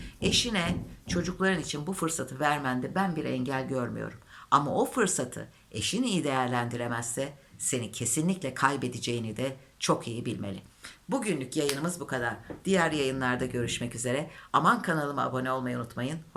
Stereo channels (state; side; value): identical; both; correlation 1.00